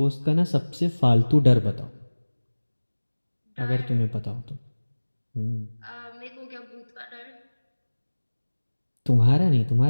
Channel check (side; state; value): both; inverted; correlation -1.00